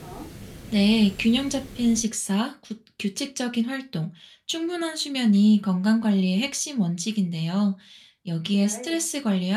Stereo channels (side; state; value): both; identical; correlation 1.00